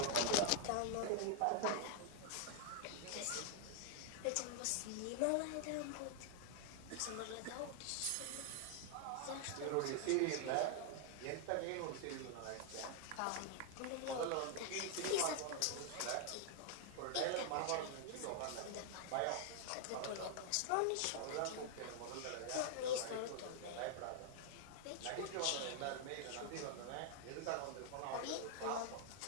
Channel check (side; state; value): both; different; correlation 0.00